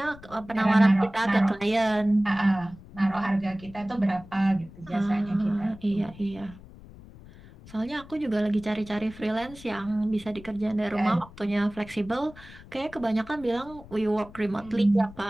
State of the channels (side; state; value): left; noise; rumble, 19 dB below the sound